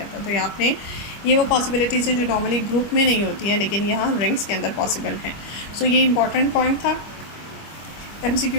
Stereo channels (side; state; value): right; late; 25 ms